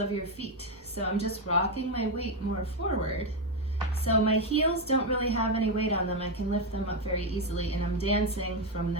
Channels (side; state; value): both; normal; correlation 0.07